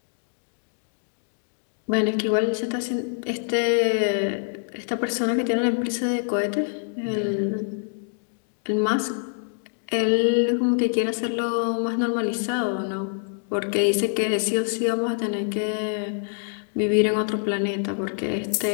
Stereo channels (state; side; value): silent; right; digital silence